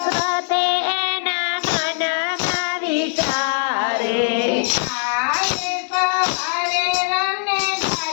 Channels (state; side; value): silent; right; digital silence